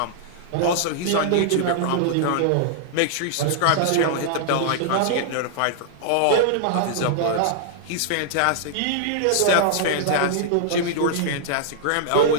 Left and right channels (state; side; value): different; both; correlation -0.01